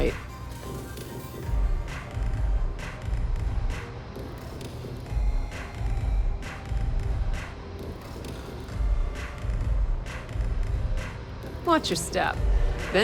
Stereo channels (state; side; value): identical; both; correlation 1.00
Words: Watch your step.